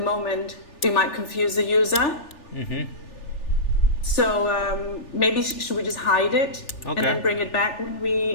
moment, it might confuse the user. So maybe should we just hide it and then bring it back when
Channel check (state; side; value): late; right; 3.4 ms